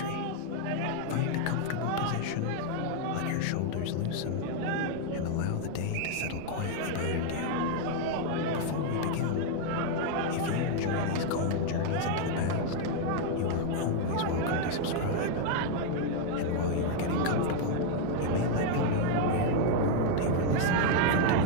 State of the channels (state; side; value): different; both; correlation 0.00